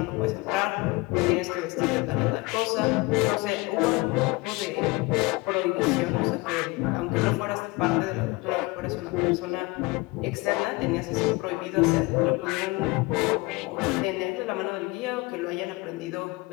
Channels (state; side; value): quieter; right; 23.8 dB